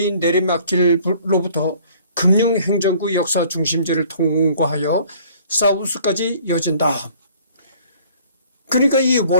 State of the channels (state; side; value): inverted; both; correlation -0.55